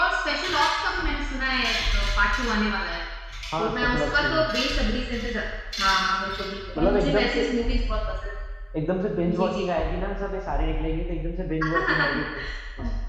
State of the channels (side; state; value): both; identical; correlation 1.00